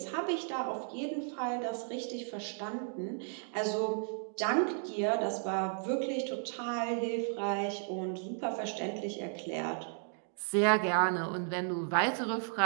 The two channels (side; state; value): left; silent; 55 dB below the other